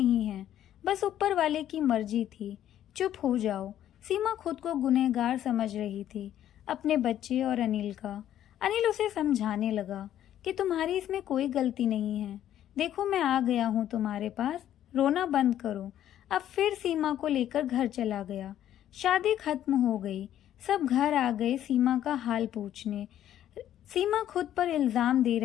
हैं, बस ऊपर वाले की मर्जी थी, चुप हो जाओ। सीमा खुद को गुनहगार समझ रही थी, अपने बच्चे और अनिल का। अनिल उसे समझाने लगा कि तुम्हारी इसमें कोई गलती नहीं है। देखो मैं आ गया हूँ तुम्हारे पास, रोना बंद करो। अब फिर सीमा को लेकर घर चला गया। शादी खत्म हो गई। सब घर आ गए सीमा का हाल पूछने। सीमा खुद पर इल्जाम दे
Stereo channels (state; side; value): quieter; right; 11.5 dB